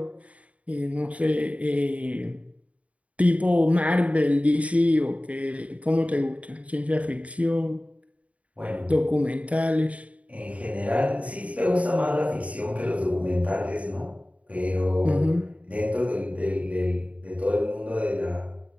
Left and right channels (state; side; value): late; left; 0.066 ms